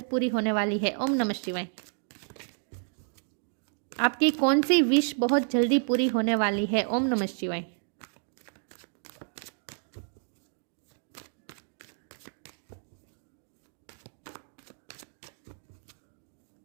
पूरी होने वाली है। ओम नमः शिवाय। आपकी कौन सी विश बहुत जल्दी पूरी होने वाली है। ओम नमः शिवाय।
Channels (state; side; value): silent; left; 56 dB below the other